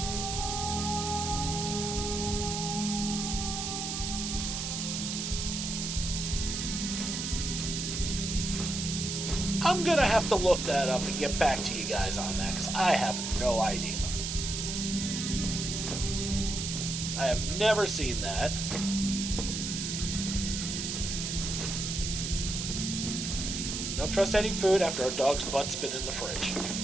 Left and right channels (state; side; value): noise; right; hiss, 3 dB below the sound